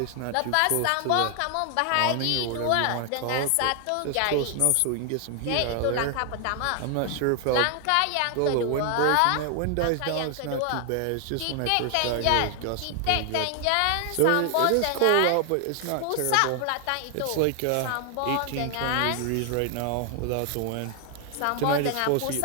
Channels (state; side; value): different; both; correlation 0.00